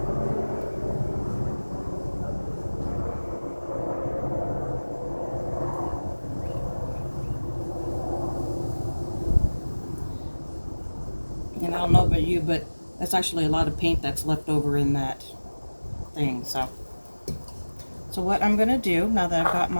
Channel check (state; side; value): inverted; both; correlation -1.00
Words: And I don't know about you, but that's actually a lot of paint that's left over in that thing. So what I'm going to do, now that I've got